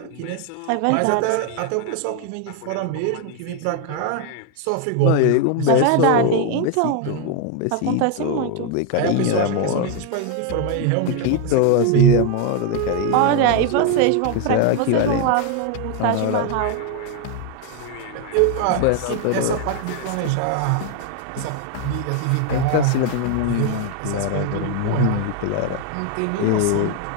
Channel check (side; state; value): both; different; correlation 0.01